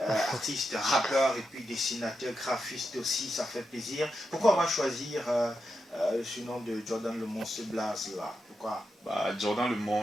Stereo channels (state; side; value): normal; both; correlation 0.87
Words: artiste, rappeur et puis dessinateur, graphiste aussi, ça fait plaisir. Pourquoi on va choisir ce nom de Jordan le Monstre, ce blaze là? Pourquoi? Bah, Jordan le